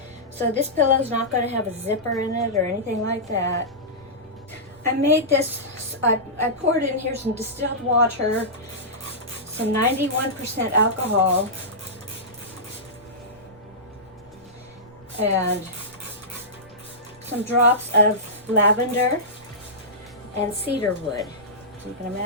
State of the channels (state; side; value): noise; right; rumble, 26 dB below the sound